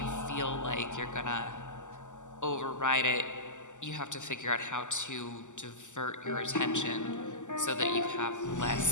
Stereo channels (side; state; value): right; late; 0.85 ms